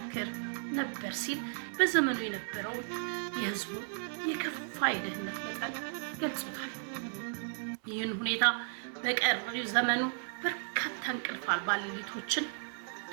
ነበር ሲል በዘመኑ የነበረው የህዝቡ የከፋ የድህነት መጠን ገልጾታል። ይህን ሁኔታ በቀሪው ዘመኑ በርካታ እንቅልፍ አልባ ሌሊቶችን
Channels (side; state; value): left; silent; 55 dB below the other